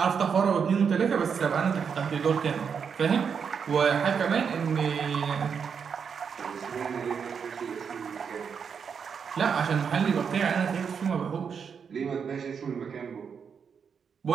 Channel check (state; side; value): quieter; left; 6.6 dB